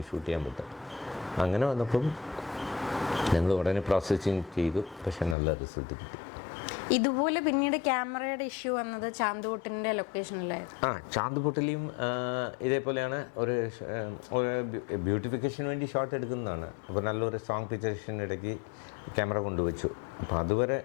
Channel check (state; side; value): drops out; right; at 5.4 s